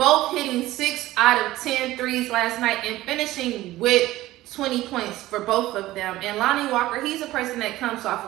hitting 6 out of 10 threes last night and finishing with 20 points for both of them. And Lonnie Walker, he's a person that comes off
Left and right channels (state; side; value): quieter; left; 16.5 dB